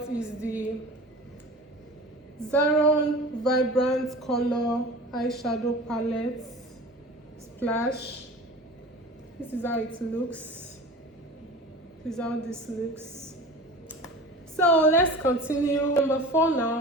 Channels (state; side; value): normal; both; correlation 0.37